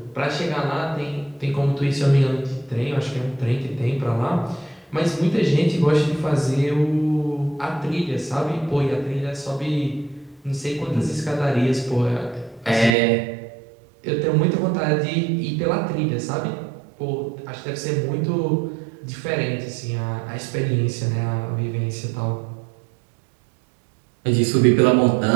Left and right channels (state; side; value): drops out; left; at 13.0 s